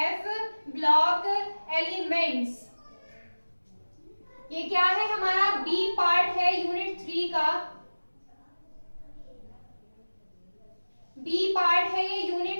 ब्लॉक एलिमेंट्स ये क्या है? हमारा बी पार्ट है यूनिट 3 का। बी पार्ट है ये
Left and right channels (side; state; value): both; inverted; correlation -1.00